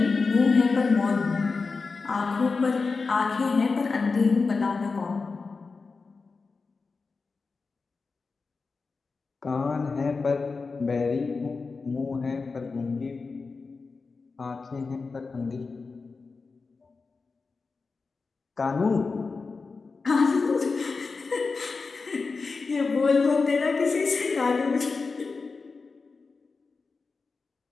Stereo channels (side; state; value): right; quieter; 4.4 dB